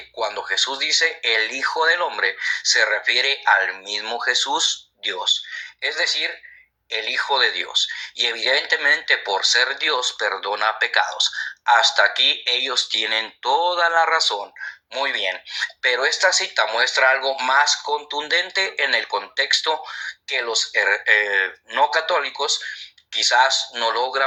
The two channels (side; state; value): both; identical; correlation 1.00